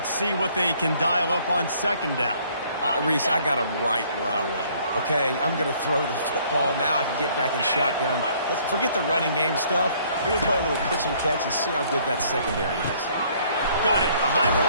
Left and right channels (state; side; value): inverted; both; correlation -0.61